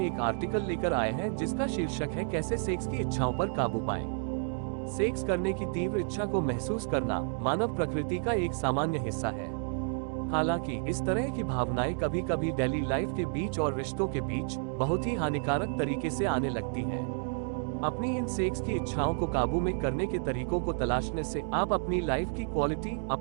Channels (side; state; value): left; silent; 57 dB below the other